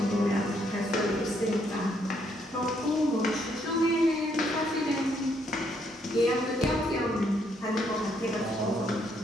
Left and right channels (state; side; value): normal; both; correlation 0.72